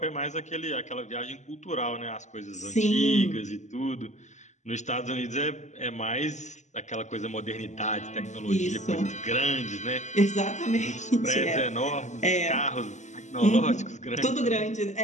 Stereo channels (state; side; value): late; right; 0.34 ms